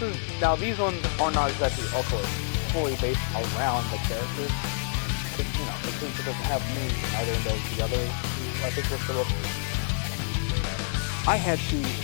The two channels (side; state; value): right; silent; digital silence